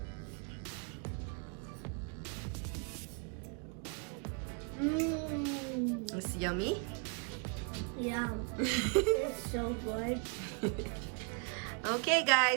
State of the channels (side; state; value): left; quieter; 35.1 dB